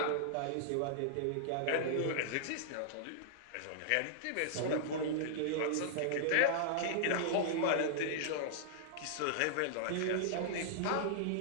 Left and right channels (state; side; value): different; both; correlation -0.01